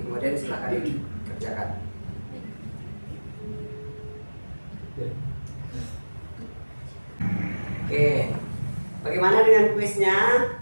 Kemudian silakan dikerjakan. Oke, bagaimana dengan kuisnya?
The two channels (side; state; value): both; inverted; correlation -1.00